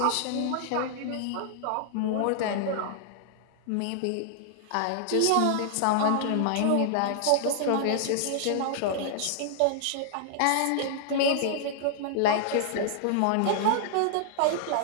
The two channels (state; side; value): different; both; correlation -0.01